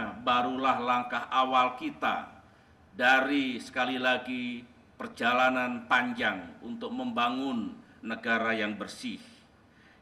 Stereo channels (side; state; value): both; identical; correlation 1.00